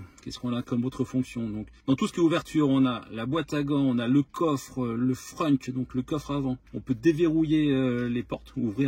Qu'est-ce qu'on a comme autre fonction? Donc dans tout ce qui est ouverture, on a la boîte à gants, on a le coffre, le frunk, donc le coffre avant. On peut déverrouiller les portes,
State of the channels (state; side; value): identical; both; correlation 1.00